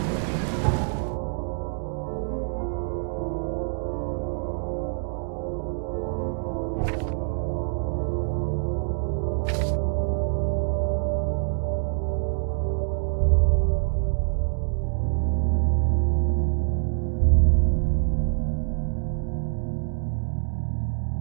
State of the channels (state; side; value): silent; left; 61 dB below the other